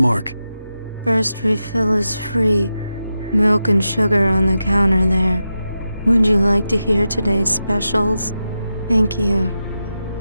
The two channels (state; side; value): inverted; both; correlation -0.90